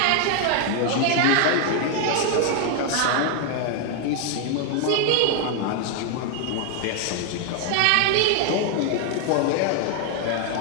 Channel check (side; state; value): both; different; correlation 0.00